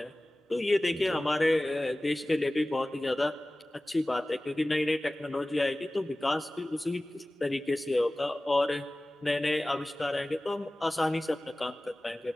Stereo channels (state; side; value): normal; both; correlation 0.97